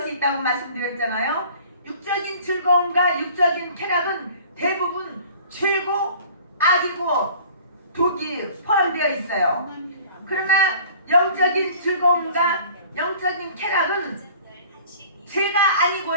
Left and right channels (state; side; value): inverted; both; correlation -0.48